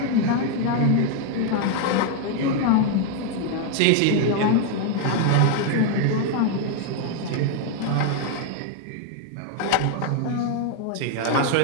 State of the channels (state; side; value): different; both; correlation 0.01